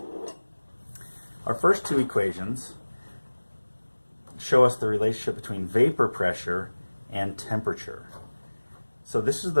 Our first two equations show us the relationship between vapor pressure and temperature. So this is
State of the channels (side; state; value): both; inverted; correlation -1.00